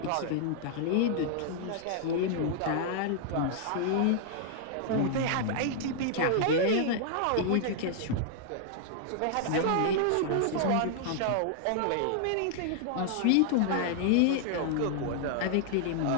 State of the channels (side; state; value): both; different; correlation 0.00